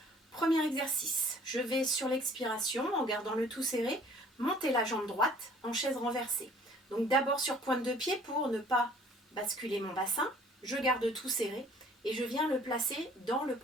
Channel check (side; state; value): both; normal; correlation 0.54